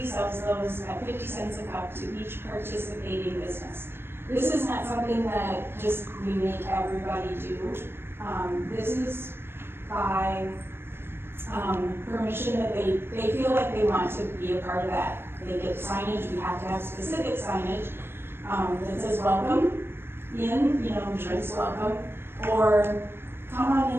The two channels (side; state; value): left; late; 0.11 ms